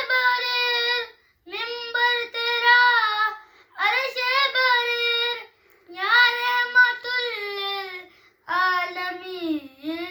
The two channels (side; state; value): both; identical; correlation 1.00